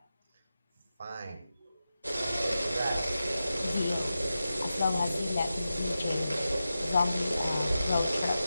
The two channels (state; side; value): inverted; both; correlation -0.92